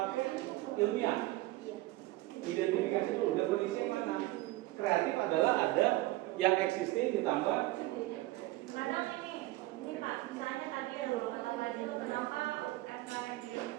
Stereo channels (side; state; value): left; quieter; 18.5 dB